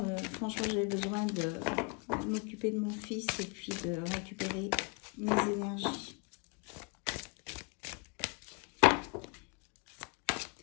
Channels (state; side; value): quieter; right; 33.6 dB